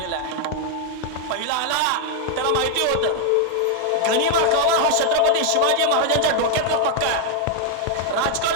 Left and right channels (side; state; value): both; different; correlation 0.00